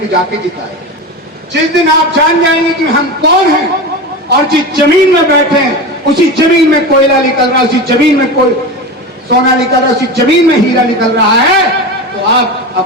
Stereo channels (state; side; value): normal; both; correlation 0.25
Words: जाके जिताए। जिस दिन आप जान जाएंगे कि हम कौन हैं और जिस जमीन में बैठे हैं उसी जमीन में कोयला निकल रहा है, उसी जमीन में कोई सोना निकल रहा है, उसी जमीन में हीरा निकल रहा है, तो आप